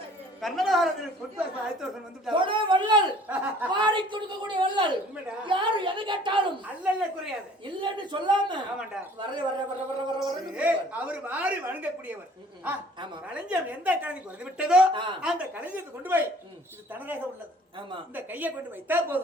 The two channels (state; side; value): normal; both; correlation 0.52